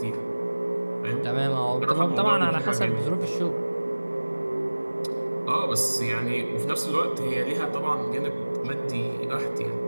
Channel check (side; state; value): both; inverted; correlation -1.00